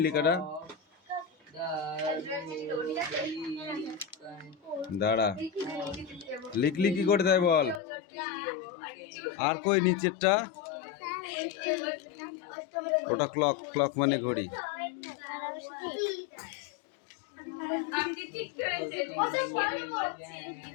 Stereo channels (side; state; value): right; drops out; at 7.8 s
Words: লেখাটা? দাঁড়া, লিখলি কি করে তাই বল। আর কই নিচেরটা? ওটা ক্লক, ক্লক মানে ঘড়ি।